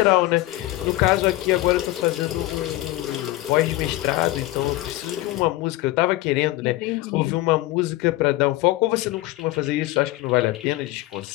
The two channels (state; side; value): quieter; right; 17.8 dB